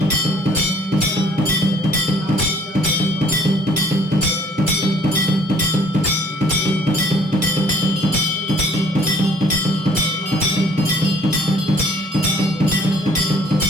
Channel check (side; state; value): both; normal; correlation 0.58